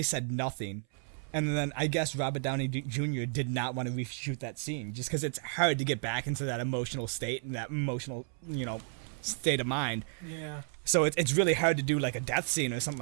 said nothing. And then I guess Robert Downey Jr. did not want to reshoot that scene, just because it's hard to get back into that emotional state and that emotional, state of mind. Yeah. So it's really hard to do like a death scene or something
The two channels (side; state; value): left; silent; 56 dB below the other